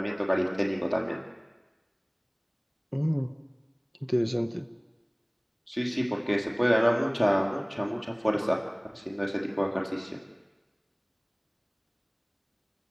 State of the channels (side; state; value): both; identical; correlation 1.00